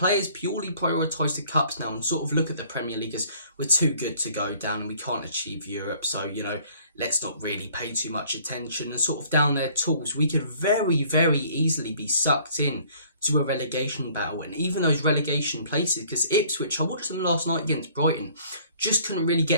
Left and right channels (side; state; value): both; inverted; correlation -0.56